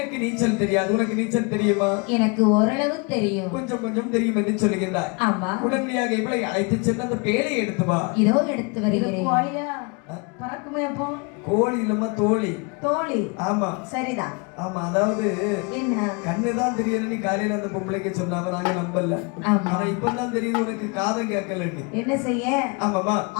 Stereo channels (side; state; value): right; quieter; 31.5 dB